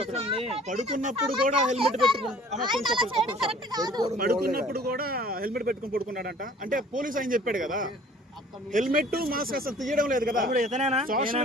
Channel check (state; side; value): normal; both; correlation 0.51